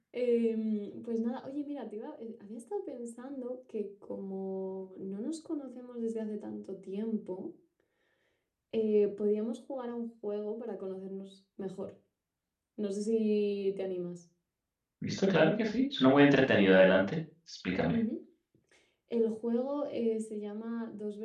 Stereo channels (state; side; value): identical; both; correlation 1.00